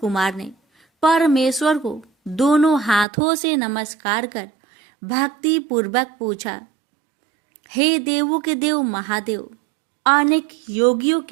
ने परमेश्वर को दोनों हाथों से नमस्कार कर भक्ति पूर्वक पूछा, हे देवों के देव महादेव, अनेक योगियों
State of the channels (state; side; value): drops out; left; at 3.1 s